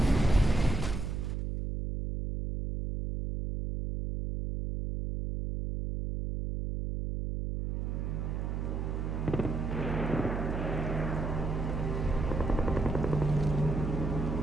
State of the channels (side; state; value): right; noise; hum, 2 dB below the sound